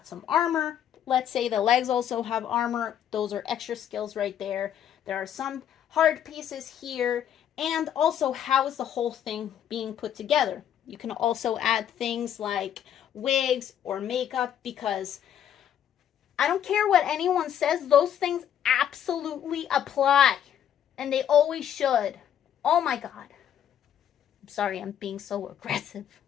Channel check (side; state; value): right; quieter; 9.8 dB